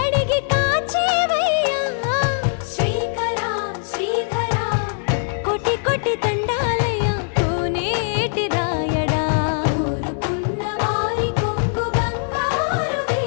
కాచేవయ్యా శ్రీకరా శ్రీధరా కోటి కోటి దండాలయ్యా కోనేటి రాయడా కోరుకున్న వారి కొంగు బంగారు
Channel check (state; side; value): silent; right; digital silence